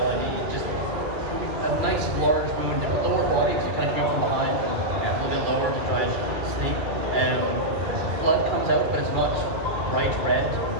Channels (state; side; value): late; left; 2.3 ms